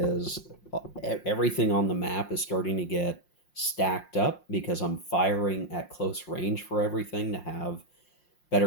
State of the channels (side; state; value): right; late; 5.6 ms